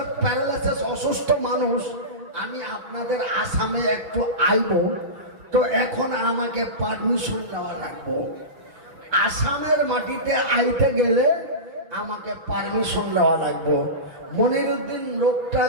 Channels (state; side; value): late; left; 6.7 ms